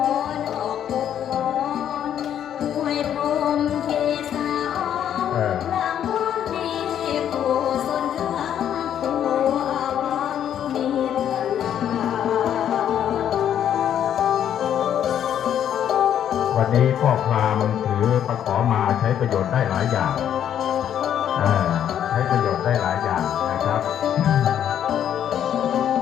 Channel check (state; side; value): quieter; right; 9.9 dB